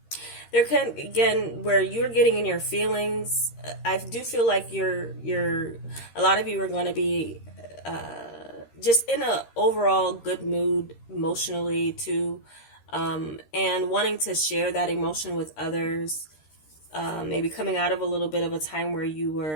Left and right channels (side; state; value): right; late; 13 ms